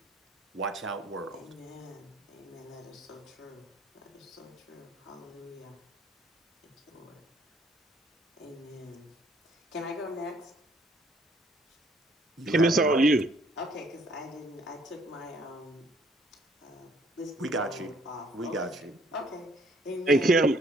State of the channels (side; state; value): both; normal; correlation 0.63